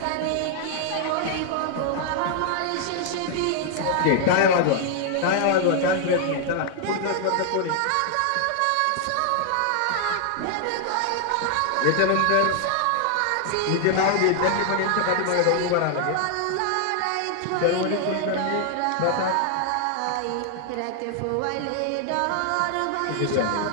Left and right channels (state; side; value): different; both; correlation 0.00